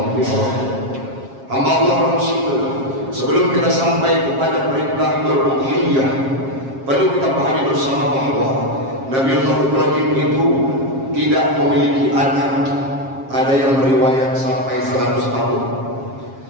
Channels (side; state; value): left; late; 7.4 ms